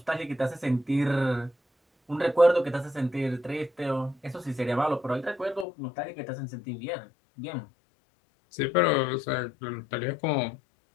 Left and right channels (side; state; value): right; drops out; at 5.7 s